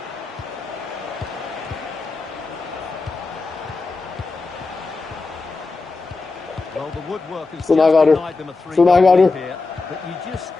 つながる。つながる。し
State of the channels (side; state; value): right; quieter; 3.8 dB